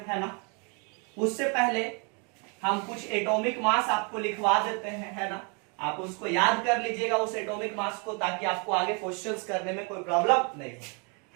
है ना। उससे पहले हम कुछ एटॉमिक मास आपको लिखवा देते हैं, है ना, आप उसको याद कर लीजिएगा उस एटॉमिक मास को, ताकि आपको आगे क्वेश्चंस करने में कोई प्रॉब्लम नहीं हो।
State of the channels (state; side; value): quieter; left; 35.2 dB